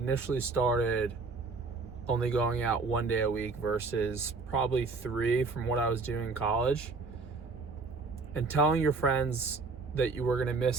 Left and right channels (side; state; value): left; quieter; 4.1 dB